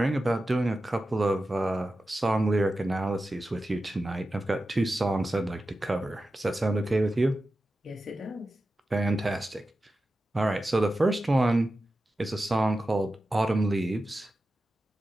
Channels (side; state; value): both; normal; correlation 0.92